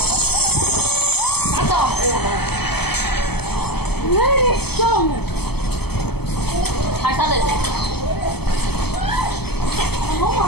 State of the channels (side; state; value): right; late; 0.97 ms